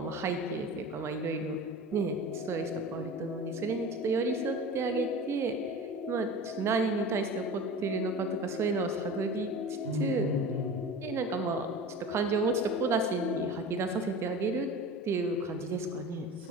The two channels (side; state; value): both; normal; correlation 0.35